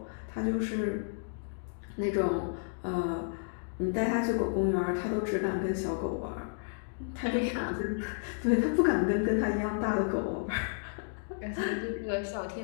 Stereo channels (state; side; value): silent; right; digital silence